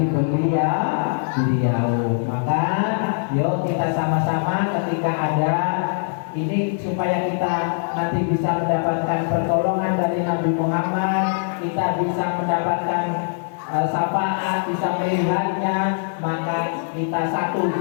beliau. Maka yuk kita sama-sama ketika ada ini supaya kita nanti bisa mendapatkan pertolongan dari Nabi Muhammad, kita bisa mendapatkan syafaat, bisa melihatnya, maka kita satu,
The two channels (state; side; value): silent; right; digital silence